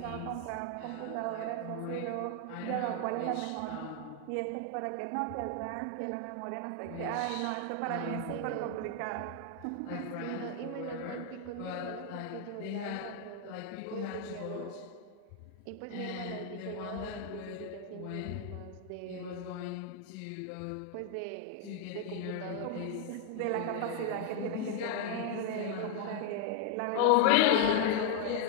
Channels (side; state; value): both; different; correlation 0.00